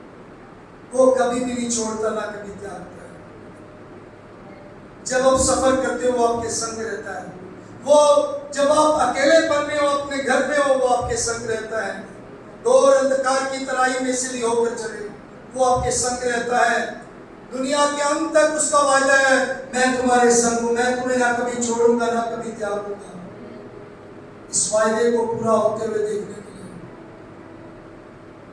वो कभी भी नहीं छोड़ता, ना कभी त्यागता है। जब आप सफर करते हो वो आपके संग रहता है। वो जब आप अकेलेपन में हो, अपने घर में हो, वो आपके संग रहता है। घोर अंधकार की तराई में से भी होकर चले, वो आपके संग रहता है। दुनिया के अंत तक उसका वायदा है, मैं तुम्हारे संग हूं, मैं तुम्हें ना कभी छोड़ूंगा, ना कभी त्यागूंगा। इस वायदे को पूरा होते हुए देखने के लिए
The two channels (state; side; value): identical; both; correlation 1.00